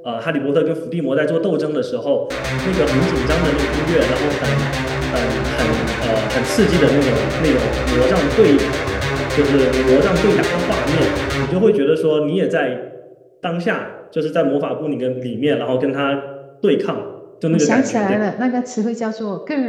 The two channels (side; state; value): both; identical; correlation 1.00